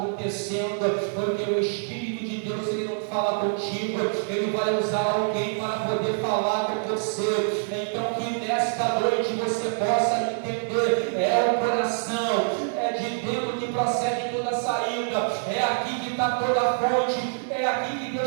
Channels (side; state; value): left; silent; digital silence